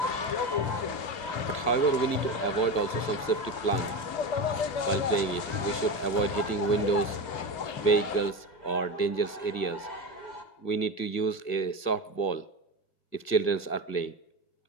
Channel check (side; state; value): right; late; 2.6 ms